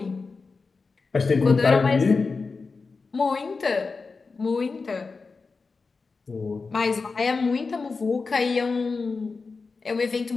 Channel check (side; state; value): right; quieter; 4.4 dB